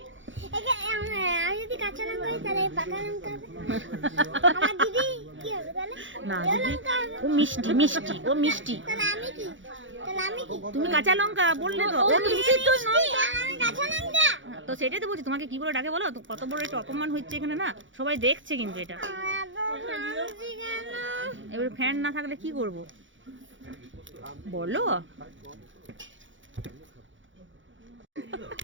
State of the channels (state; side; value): late; left; 0.56 ms